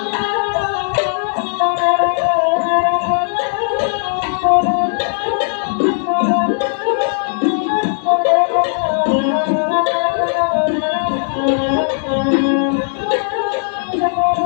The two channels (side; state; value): right; silent; 61 dB below the other